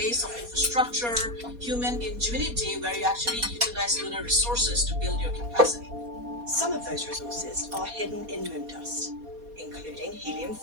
of infrastructure, human ingenuity, where you actually utilize lunar resources to build your capacity. Some of those resources are hidden in moon dust, including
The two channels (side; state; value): left; late; 4.2 ms